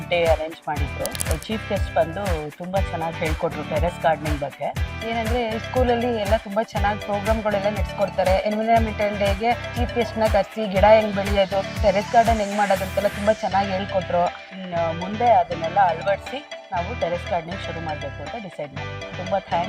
ಡೇ ಅರೇಂಜ್ ಮಾಡಿದ್ರು. ಚೀಫ್ ಗೆಸ್ಟ್ ಬಂದು ತುಂಬ ಚೆನ್ನಾಗಿ ಹೇಳ್ಕೊಟ್ರು ಟೆರೆಸ್ ಗಾರ್ಡನಿಂಗ್ ಬಗ್ಗೆ. ಏನಂದರೆ ಸ್ಕೂಲಲ್ಲಿ ಎಲ್ಲ ತುಂಬ ಚೆನ್ನಾಗಿ ಪ್ರೋಗ್ರಾಮ್ಗಳೆಲ್ಲ ನಡೆಸ್ಕೊಡ್ತಾರೆ. ಎನ್ವೈರನ್ಮೆಂಟಲ್ ಡೇಗೆ ಚೀಫ್ ಗೆಸ್ಟ್ನ ಕರೆಸಿ ಗಿಡ ಹೆಂಗೆ ಬೆಳೆಯೋದು, ಟೆರೆಸ್ ಗಾರ್ಡನ್ ಹೆಂಗೆ ಮಾಡೋದು ಅಂತೆಲ್ಲ ತುಂಬ ಚೆನ್ನಾಗಿ ಹೇಳ್ಕೊಟ್ರು. ಇನ್ನು ಮುಂದೆ ಅದನ್ನೆಲ್ಲ ಅಳವಡಿಸಿ ನಾವು ಟೆರೆಸ್ ಗಾರ್ಡನಿಂಗ್ ಶುರು ಮಾಡಬೇಕು ಅಂತ ಡಿಸೈಡ್ ಮಾಡಿದ್ವಿ. ತುಂಬ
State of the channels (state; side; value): identical; both; correlation 1.00